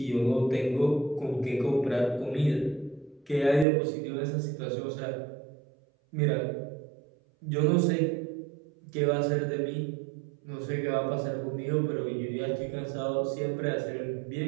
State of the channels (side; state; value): left; drops out; at 3.7 s